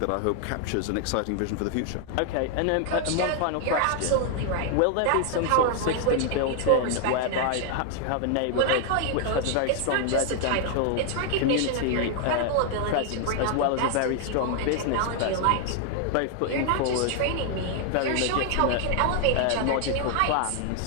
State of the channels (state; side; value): different; both; correlation 0.00